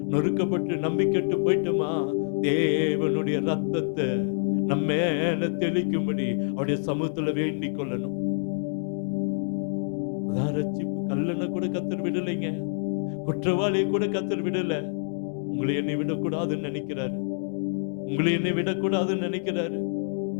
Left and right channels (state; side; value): silent; right; digital silence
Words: நொறுக்கப்பட்டு நம்பிக்கட்டு போயிட்டோமா, தேவனுடைய ரத்தத்தை நம்ம மேல தெளிக்கும்படி அவருடைய சமூகத்துல வேண்டிக் கொள்ளணும். அதான் ரட்சிப்பு. கல்லனை கூட கர்த்தர் விடலைங்க, குற்றவாளியை கூட கர்த்தர் விடல. உங்களை என்னை விடக்கூடாதுன்னு நினைக்கிறாரு, உங்களை என்னை விடக்கூடாதுன்னு நினைக்கிறாரு.